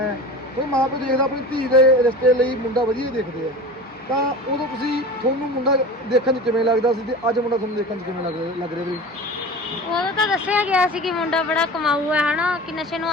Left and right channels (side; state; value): both; normal; correlation 0.34